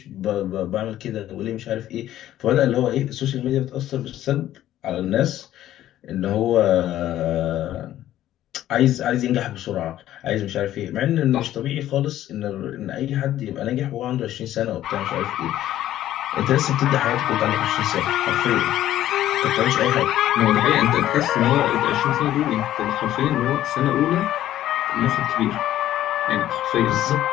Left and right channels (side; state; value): right; quieter; 12.9 dB